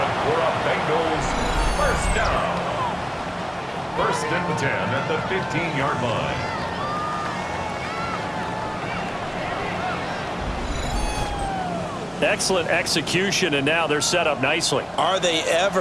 for a Bengals 1st down. 1st and 10 at the 15-yard line. Excellent execution, and now they're set up nicely. Are they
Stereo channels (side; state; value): both; identical; correlation 1.00